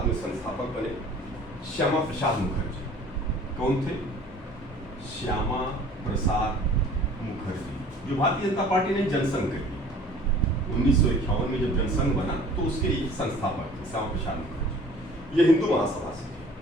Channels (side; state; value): both; normal; correlation 0.48